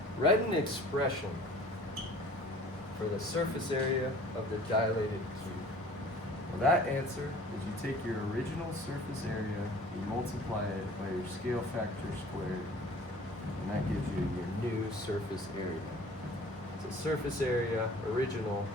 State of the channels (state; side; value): normal; both; correlation 0.48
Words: write an expression for the surface area of the dilated cube. Well, that answer is you take your original surface area, you multiply it by your scale factor squared, and that gives you your new surface area. So surface area, original,